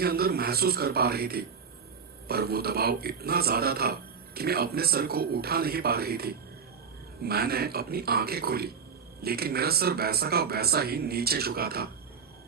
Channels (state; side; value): quieter; left; 6.1 dB